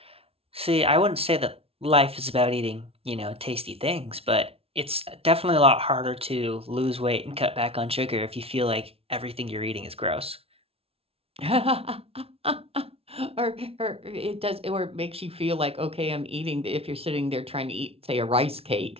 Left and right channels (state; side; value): late; left; 0.28 ms